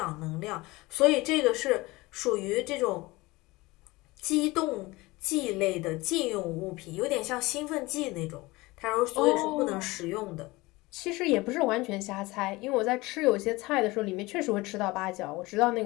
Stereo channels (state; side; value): quieter; right; 21.6 dB